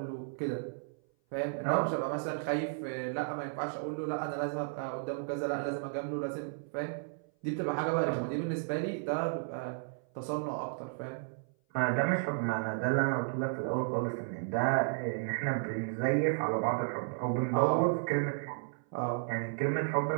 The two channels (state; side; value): silent; left; 55 dB below the other